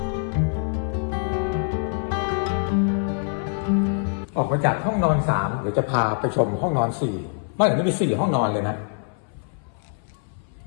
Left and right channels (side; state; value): right; silent; 58 dB below the other